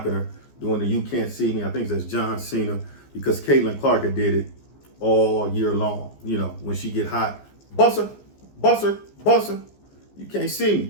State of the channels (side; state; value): right; late; 14 ms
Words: her, doing the "You Can't See Me." I think that's John Cena, because Caitlin Clark had did it all year long. You know, when she get hot, busser, busser, busser, you can't see